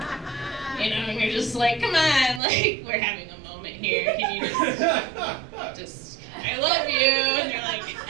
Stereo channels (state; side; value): drops out; left; at 2.4 s